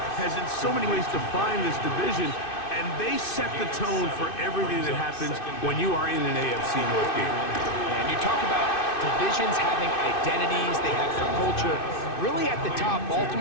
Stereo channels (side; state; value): right; late; 2.6 ms